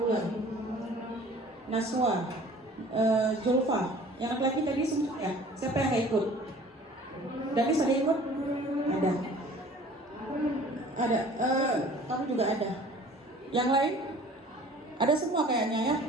Naswa, Zulfa, yang laki-laki tadi semua ya? Siapa yang nggak ikut? Danis ada ikut? Ada. Ada. Kamu juga ada. Yang lain? Ada semua kayaknya ya?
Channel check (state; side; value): normal; both; correlation 0.49